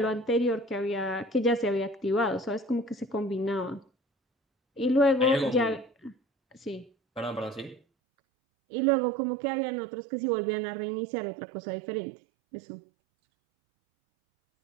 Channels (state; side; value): drops out; left; at 7.8 s